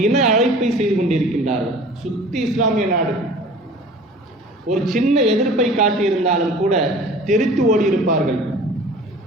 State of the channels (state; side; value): normal; both; correlation 0.44